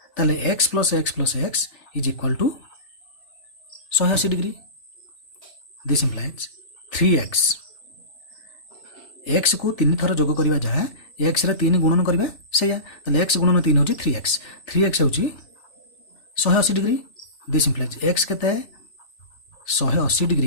ताले x plus x is equal to 180 degree. This implies 3x x को 3 थर जोग करवा जहाँ एक्स रे 3 गुणन करवा से एक्स गुणन 3 हूँ 3x 3x हूँ 180 डिग्री। दिस इम्प्लाइज एक्स के 180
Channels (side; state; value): right; late; 3.4 ms